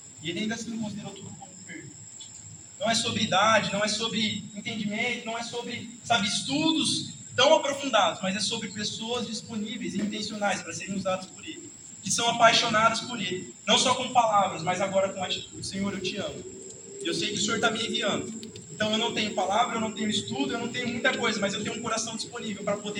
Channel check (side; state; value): both; identical; correlation 1.00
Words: E ele ainda assim considerou tudo como perda. Não é sobre idade, não é sobre entendimento, não é sobre, sabe, estudos tão aprofundados, mas é sobre pessoas disponíveis e intencionais para serem usadas por Ele, que são apaixonadas por Ele, não só com palavras, mas agora com atitude. Senhor, eu te amo. Eu sei que o Senhor está me enviando. Então eu não tenho palavra, eu não tenho estudo, eu não tenho muita coisa, mas eu tenho um coração disponível para